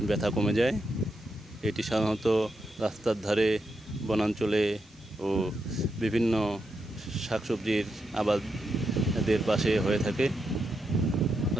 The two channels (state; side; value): normal; both; correlation 0.84